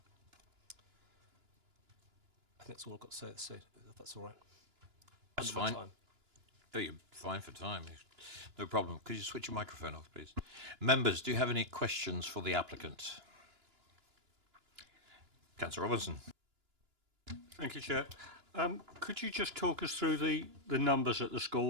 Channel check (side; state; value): left; late; 2.9 ms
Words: I think that's all I've got to say, if that's all right. That's Under my fine. time. Oh, you're fine for time. No problem. Could you switch your microphone off, please? Members, do you have any questions for the applicant? Councillor Robinson. Thank you, Chair. Could you just talk us through the numbers at the